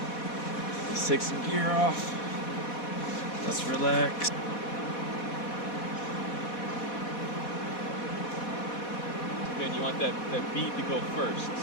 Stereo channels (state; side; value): late; right; 4.1 ms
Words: let's take some gear off. Let's relax. Man, you want that bead to go first,